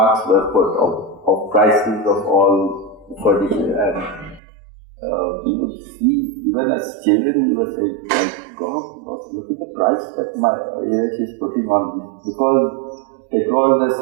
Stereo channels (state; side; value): drops out; left; at 4.4 s